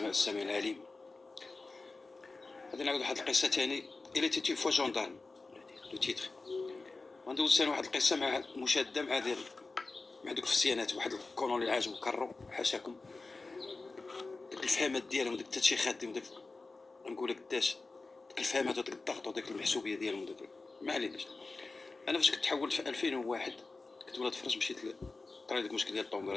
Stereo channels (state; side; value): quieter; right; 3.7 dB